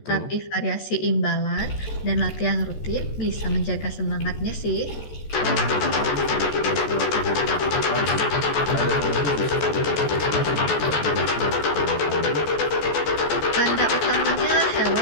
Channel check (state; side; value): late; right; 14 ms